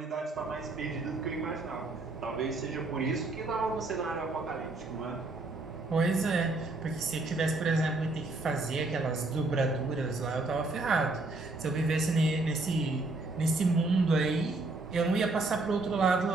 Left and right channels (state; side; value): quieter; left; 3.1 dB